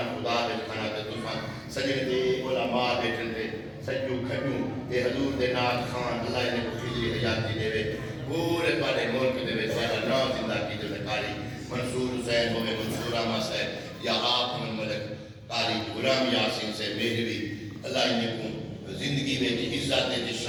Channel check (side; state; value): both; identical; correlation 1.00